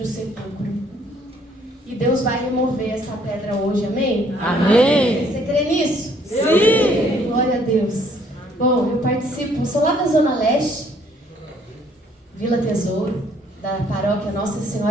sepulcro. E Deus vai remover essa pedra hoje, amém? Amém. Você crê nisso? Sim. Glória a Deus. Bom, eu participo, sou lá da Zona Leste, Vila Tesouro, da paróquia Nossa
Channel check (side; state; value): both; normal; correlation 0.63